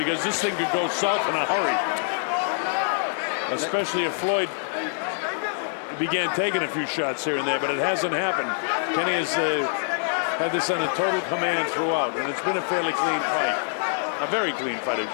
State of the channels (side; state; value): right; silent; 60 dB below the other